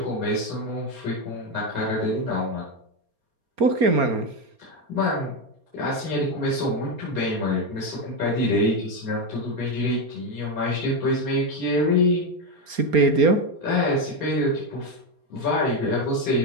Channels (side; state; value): left; late; 4.3 ms